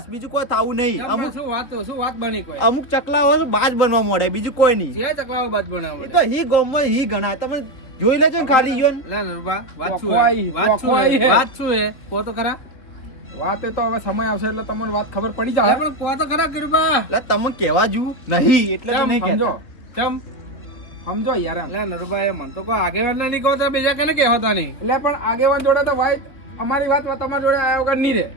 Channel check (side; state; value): right; late; 3.5 ms